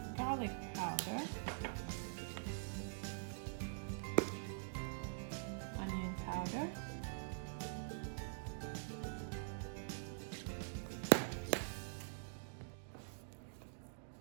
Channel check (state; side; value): silent; left; digital silence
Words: garlic powder, onion powder,